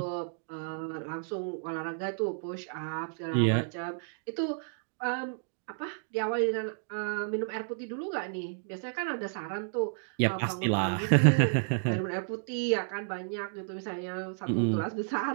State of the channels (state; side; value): silent; left; digital silence